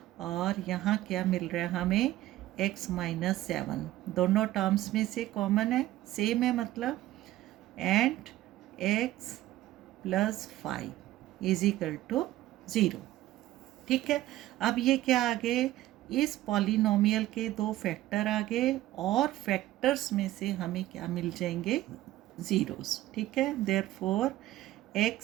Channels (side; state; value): left; quieter; 15.2 dB